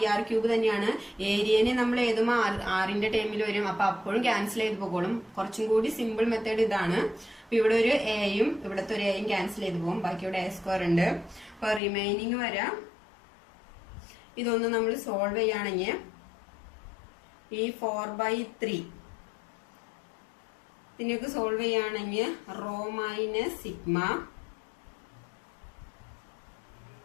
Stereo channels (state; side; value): drops out; right; at 11.8 s